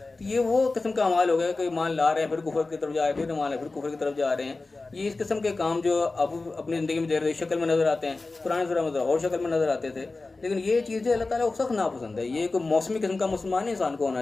تو یہ وہ قسم کا اعمال ہو گیا کہ ایمان لا رہے ہیں، پھر کفر کی طرف جا رہے ہیں، پھر ایمان ہے، پھر کفر کی طرف جا رہے ہیں. یہ اس قسم کے کام جو اب اپنی زندگی میں دیر شکل میں نظر آتے ہیں، پرانے زمانے میں اور شکل میں نظر آتے تھے. لیکن یہ چیزیں اللہ تعالیٰ کو سخت ناپسند ہے. یہ کوئی موسمی قسم کا مسلمان انسان کو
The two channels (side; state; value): right; quieter; 3.5 dB